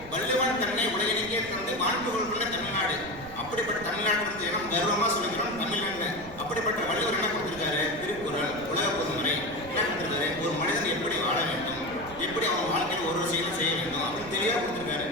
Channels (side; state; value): right; noise; rumble, 17 dB below the sound